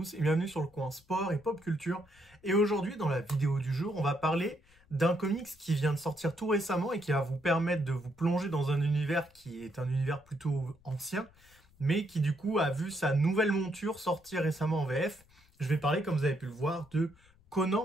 et bienvenue sur le coin sport et pop culture. Et aujourd'hui, dans la vidéo du jour, on va parler d'un comics qui vient de sortir tout récemment et qui va vous permettre de vous plonger dans un univers qui est un univers plutôt ancien, mais qui du coup a vu sa nouvelle monture sortir récemment en VF. Je vais parler, comme vous avez pu le voir, de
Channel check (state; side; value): noise; left; rumble, 29 dB below the sound